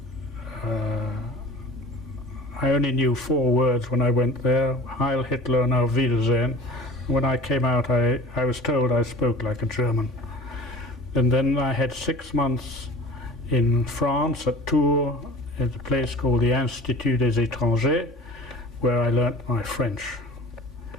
I only knew 4 words when I went there: Heil Hitler and Auf Wiedersehen. When I came out, I was told I spoke like a German. And then I had 6 months in France at Tours, at a place called the Institut des Étrangers, where I learnt my French.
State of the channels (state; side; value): normal; both; correlation 0.41